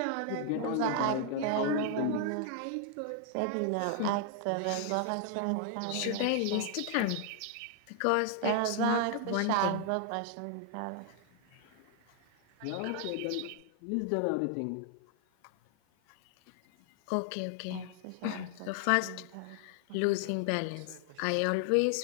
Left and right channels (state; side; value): different; both; correlation 0.00